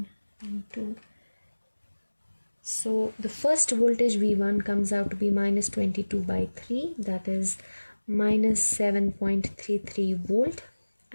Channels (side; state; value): both; inverted; correlation -1.00